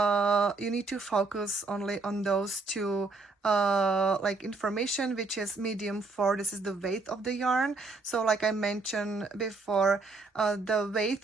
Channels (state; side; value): quieter; left; 3.8 dB